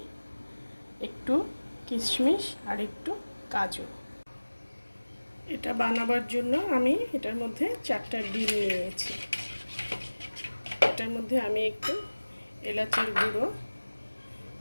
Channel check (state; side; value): inverted; both; correlation -1.00